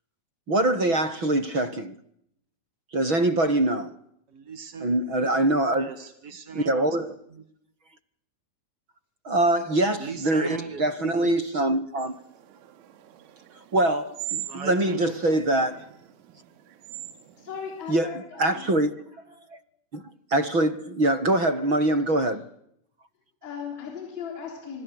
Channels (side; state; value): left; late; 6.1 ms